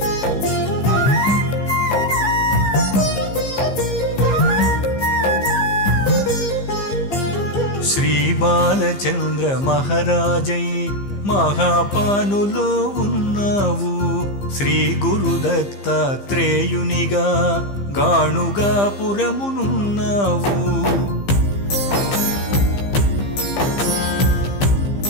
శ్రీ బాలచంద్ర మహారాజై మహాపానులో ఉన్నావు శ్రీ గురు దత్తాత్రేయునిగా గాణుగా పురమునున్నావు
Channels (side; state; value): right; late; 15 ms